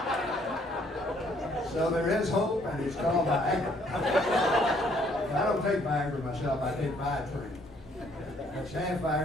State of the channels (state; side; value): normal; both; correlation 0.65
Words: So there is hope, and it's called Viagra. I don't take Viagra myself. I take Viatrain. That's half